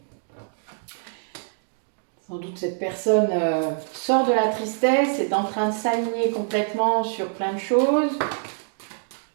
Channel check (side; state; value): left; silent; digital silence